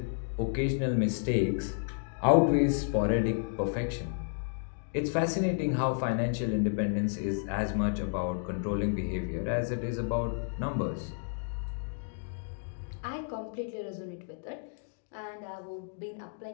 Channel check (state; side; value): silent; right; digital silence